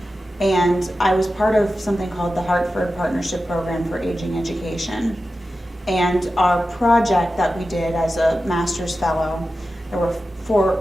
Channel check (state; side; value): normal; both; correlation 0.93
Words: And I was part of something called the Hartford Partnership Program for Aging Education. And our project that we did as a master's fellow, there were